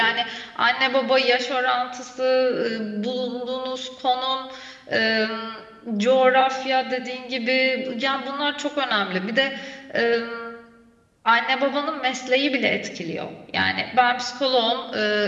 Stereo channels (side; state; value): both; identical; correlation 1.00